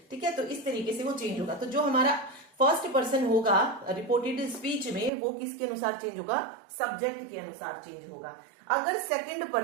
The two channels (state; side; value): drops out; left; at 5.1 s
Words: ठीक है, तो इस तरीके से वो चेंज होगा। तो जो हमारा फर्स्ट पर्सन होगा रिपोर्टेड स्पीच में, वो किसके अनुसार चेंज होगा, सब्जेक्ट के अनुसार चेंज होगा। अगर सेकंड